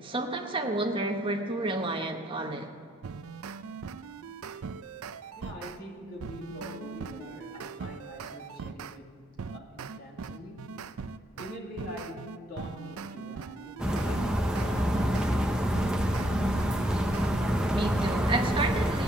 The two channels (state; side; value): normal; both; correlation 0.71